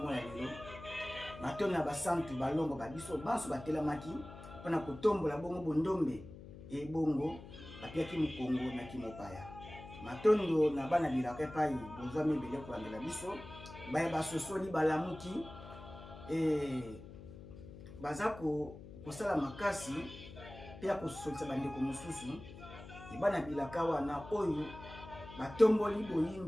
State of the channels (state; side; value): noise; left; hum, 15 dB below the sound